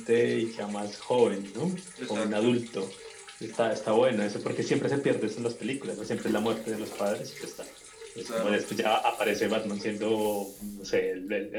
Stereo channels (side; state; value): both; identical; correlation 1.00